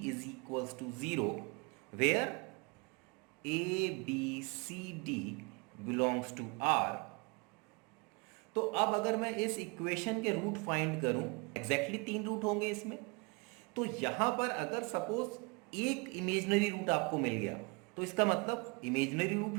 is equals to 0, where a b c d belongs to R. तो अब अगर मैं इस इक्वेशन के रूट फाइंड करूं, एग्जैक्टली 3 रूट होंगे इसमें, तो यहां पर अगर सपोज एक इमेजिनरी रूट आपको मिल गया, तो इसका मतलब इमेजिनरी रूट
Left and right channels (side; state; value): left; quieter; 30.1 dB